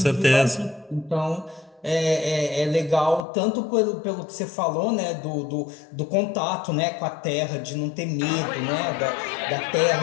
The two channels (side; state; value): right; drops out; at 3.2 s